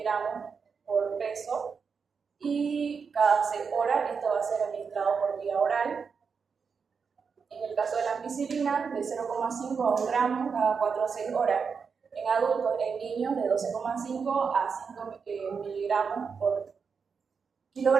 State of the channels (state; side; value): quieter; left; 5.7 dB